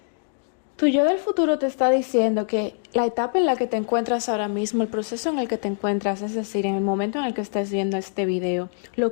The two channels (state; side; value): silent; right; digital silence